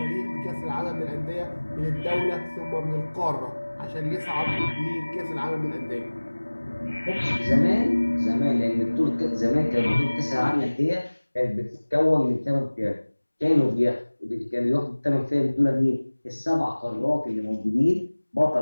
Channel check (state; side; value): inverted; both; correlation -1.00